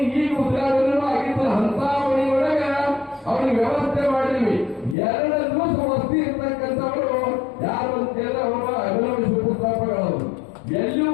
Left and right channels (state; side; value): drops out; right; at 5.0 s